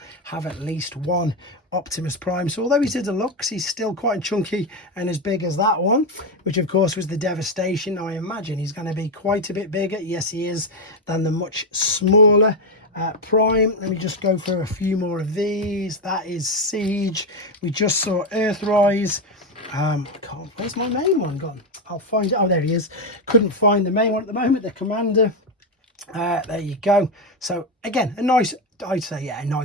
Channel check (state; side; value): normal; both; correlation 0.08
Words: have at least one Optimus Prime. So although he's a deluxe, he's still quite chunky and as big as that one, which of course was the Devastation. I imagine he's going to be quite a bit bigger, yes he is, than the much smaller Prime. Let me just go for a few more of these. That is Siege. We just saw Earthrise. Where's my main one gone? I'll find it. Oh, there he is. Couldn't find the main one at the moment, the Commander. There you go. So again, a nice, I'd say, yeah, a